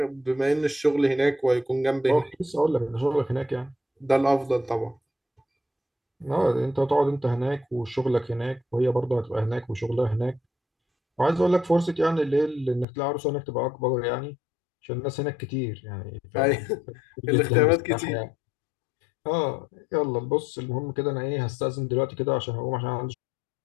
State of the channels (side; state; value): right; drops out; at 12.9 s